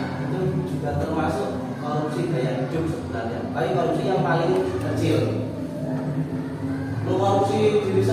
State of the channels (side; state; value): both; identical; correlation 1.00